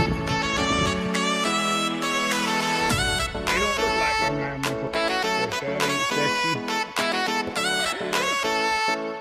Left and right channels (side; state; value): both; identical; correlation 1.00